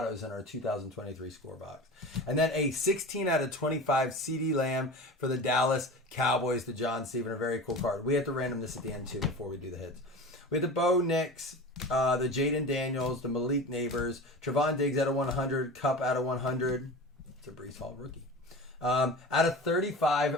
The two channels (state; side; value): normal; both; correlation 0.33